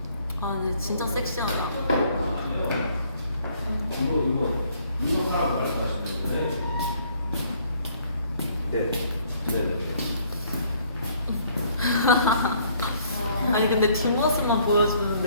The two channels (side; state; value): both; inverted; correlation -0.63